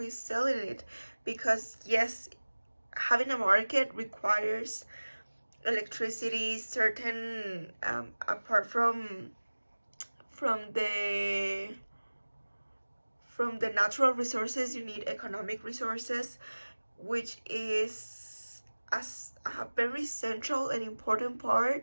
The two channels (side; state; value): both; inverted; correlation -1.00